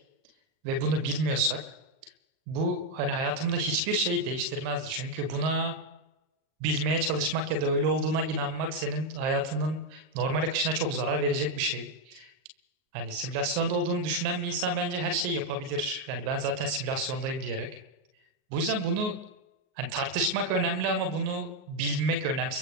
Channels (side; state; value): left; late; 38 ms